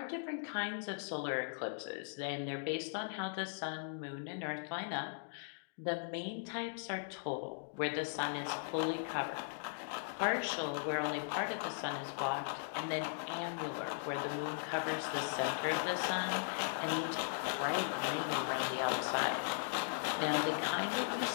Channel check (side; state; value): right; silent; digital silence